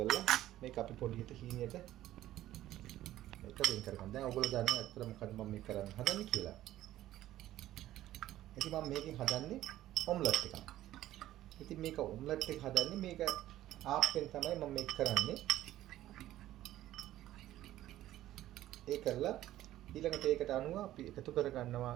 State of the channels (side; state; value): left; quieter; 14.0 dB